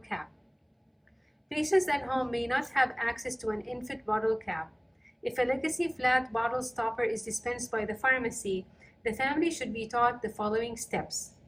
cap. Patients at home may not have access to an ENFit bottle cap. If a legacy flat bottle stopper is dispensed by the pharmacy, The family should be taught the following steps.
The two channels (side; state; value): both; identical; correlation 1.00